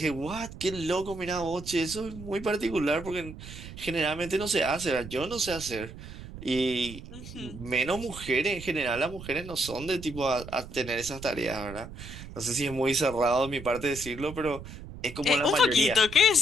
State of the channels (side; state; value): right; noise; rumble, 13 dB below the sound